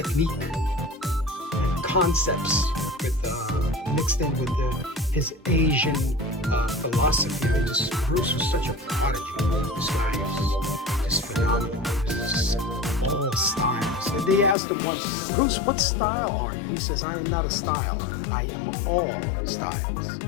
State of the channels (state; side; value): drops out; right; at 14.6 s